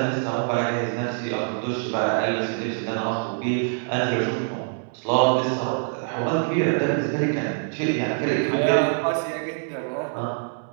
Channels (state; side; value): silent; left; digital silence